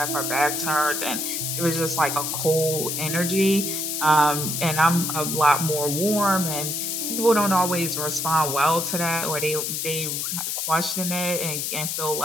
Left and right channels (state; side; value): noise; left; hiss, 2 dB below the sound